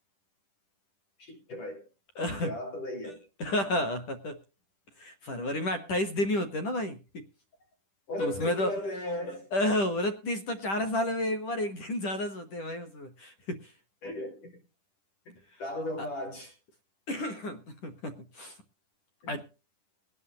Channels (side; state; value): right; late; 10 ms